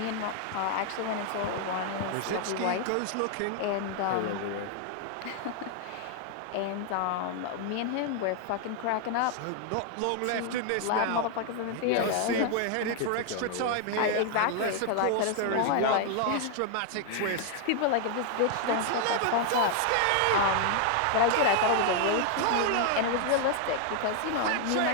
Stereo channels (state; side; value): different; both; correlation 0.00